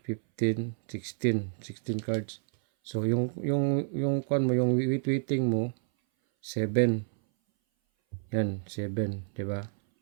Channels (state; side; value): silent; left; 58 dB below the other